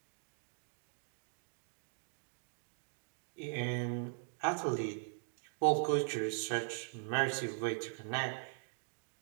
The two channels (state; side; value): silent; left; digital silence